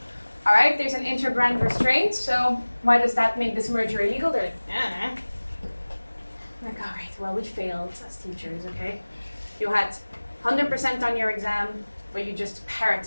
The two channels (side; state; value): both; inverted; correlation -1.00